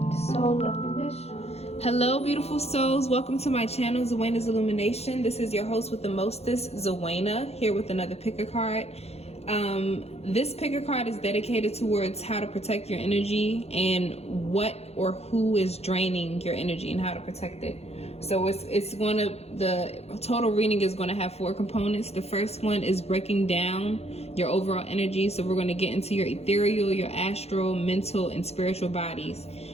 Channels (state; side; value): late; right; 0.30 ms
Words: soul of mission. Hello, beautiful souls. Welcome to my channel, Zwena'sIllumination. This is your host with the mostest, Zwena, here with another picker card. This picker card is dedicated towards how to protect your energy and what or who is draining your energy and how to protect it. So the total reading is going to have 4 components. The first one is breaking down your overall energy. So we're going to get into your ethereal, your astral, mental, and spiritual bodies.